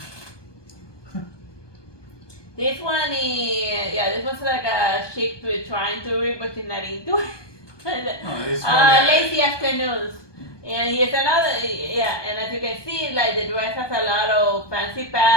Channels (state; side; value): late; right; 1.2 ms